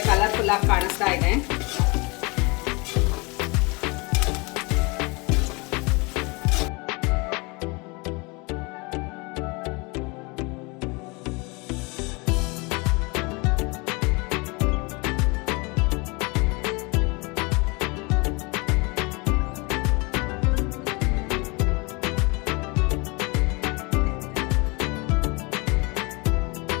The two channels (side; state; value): right; quieter; 28.0 dB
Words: ಕಲರ್ಫುಲ್ ಆಗಿ ಕಾಣಿಸ್ತಾ ಇದೆ.